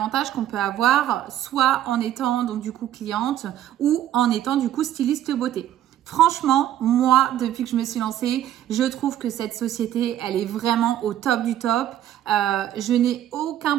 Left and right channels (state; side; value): quieter; left; 11.9 dB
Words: qu'on peut avoir, soit en étant donc du coup cliente ou en étant du coup styliste beauté. Franchement, moi, depuis que je me suis lancée, je trouve que cette société, elle est vraiment au top du top. Je n'ai aucun